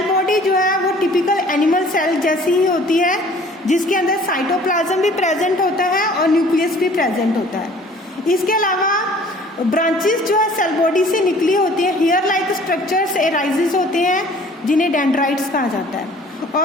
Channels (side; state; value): both; normal; correlation 0.51